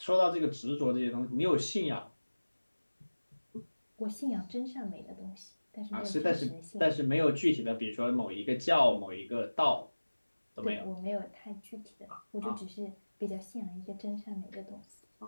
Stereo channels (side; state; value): both; inverted; correlation -1.00